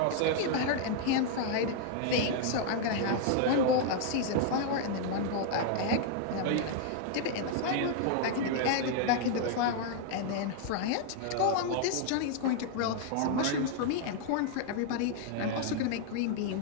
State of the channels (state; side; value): different; both; correlation 0.00